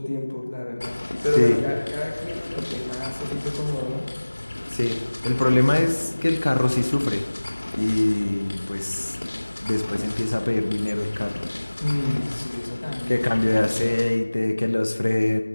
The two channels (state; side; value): inverted; both; correlation -1.00